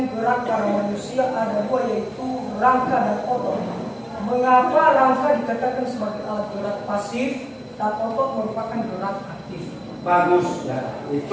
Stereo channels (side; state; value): both; identical; correlation 1.00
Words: gerak pada manusia ada 2, yaitu rangka dan otot. Mengapa rangka dikatakan sebagai alat gerak pasif dan otot merupakan gerak aktif? Bagus ya,